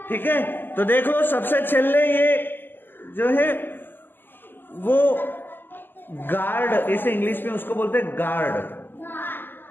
ठीक है। तो देखो सबसे छेले ये जो है वो गार्ड, इसे इंग्लिश में उसको बोलते हैं गार्ड।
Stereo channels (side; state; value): right; late; 0.093 ms